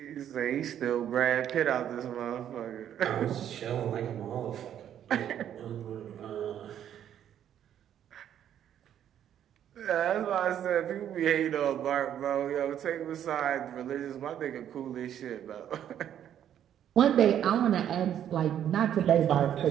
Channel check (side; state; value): left; quieter; 10.1 dB